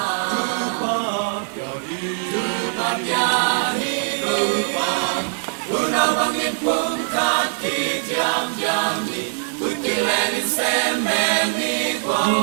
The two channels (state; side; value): silent; left; digital silence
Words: tu pa ya hi tu pa tu na bang in pum ka ki jam jam ni tu ki len in sem me ni